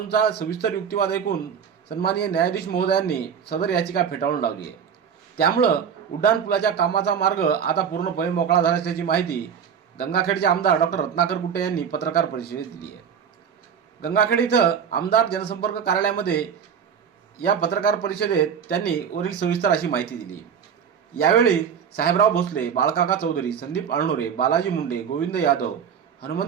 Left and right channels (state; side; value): quieter; left; 7.6 dB